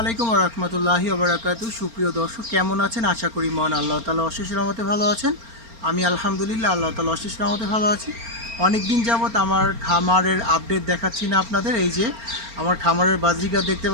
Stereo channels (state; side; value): late; left; 4.3 ms